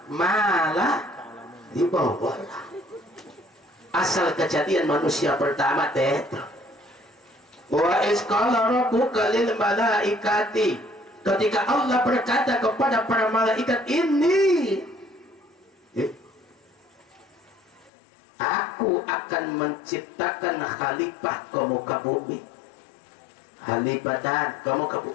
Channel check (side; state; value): right; drops out; at 17.9 s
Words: ma la ta'lamun. Asal kejadian manusia pertama teh. Wa iz qala rabbuka lil malaikati, ketika Allah berkata kepada para malaikat, ini aku akan menciptakan khalifah ke muka bumi. Khalifatan ke muka